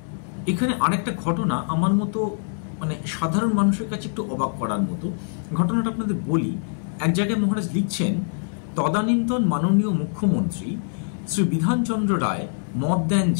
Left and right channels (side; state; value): right; silent; digital silence